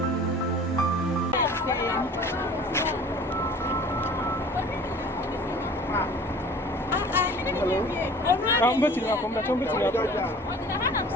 I'm going to come back.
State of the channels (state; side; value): normal; both; correlation 0.45